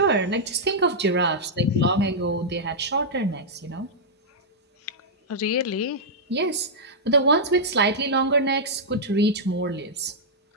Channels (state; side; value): normal; both; correlation -0.08